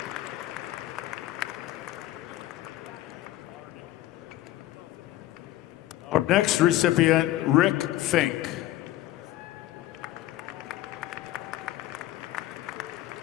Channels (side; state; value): right; quieter; 15.0 dB